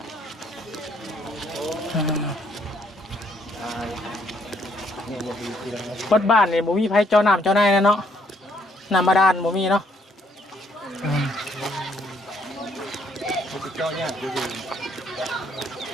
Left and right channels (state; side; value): normal; both; correlation 0.67